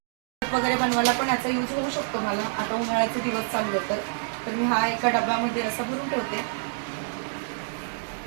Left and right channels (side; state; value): left; silent; 60 dB below the other